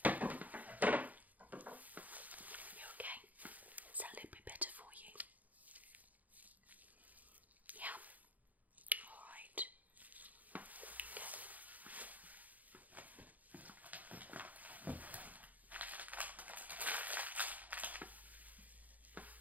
You okay? Is that a little bit better for you? Yeah. Alright. Okay.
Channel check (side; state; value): left; late; 0.078 ms